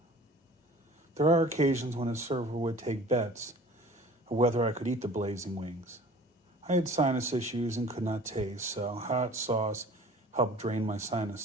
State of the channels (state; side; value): normal; both; correlation 0.46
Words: There are occasions when a server would take bets of whether I could eat the blazing wings. I had sinus issues and could not taste, so hot sauce helped drain my